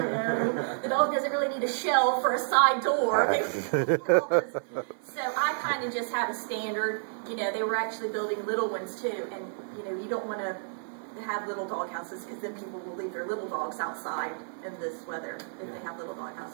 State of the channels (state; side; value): silent; left; 55 dB below the other